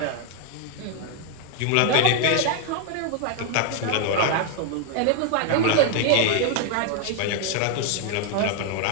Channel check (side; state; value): both; different; correlation 0.00